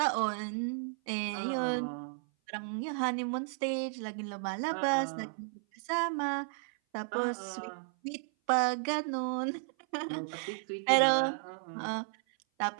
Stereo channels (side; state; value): left; silent; 55 dB below the other